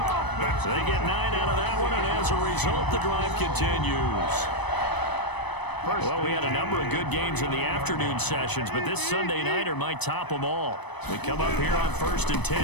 So they get 9 out of that one, and as a result, the drive continues. Well, we had a number of good games in the afternoon sessions, but this Sunday nighter might top them all. We come up here on 1st and 10.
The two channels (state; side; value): late; right; 0.99 ms